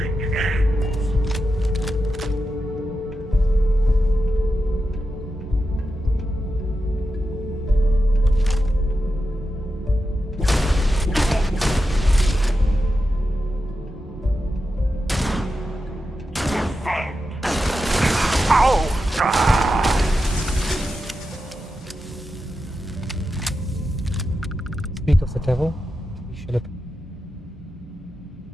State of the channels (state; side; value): normal; both; correlation 0.89